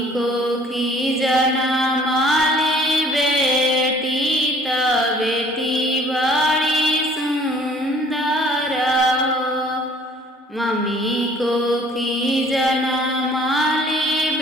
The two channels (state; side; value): normal; both; correlation 0.55